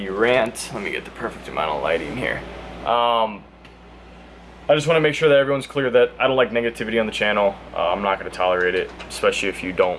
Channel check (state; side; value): identical; both; correlation 1.00